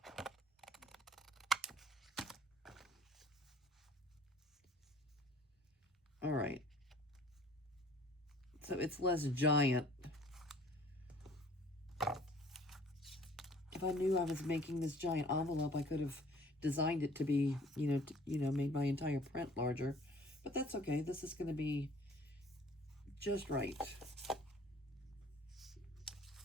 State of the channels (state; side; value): normal; both; correlation 0.52